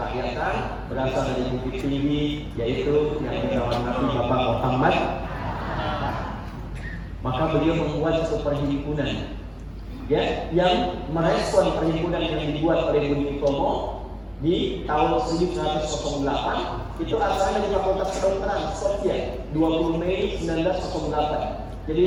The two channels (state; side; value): identical; both; correlation 1.00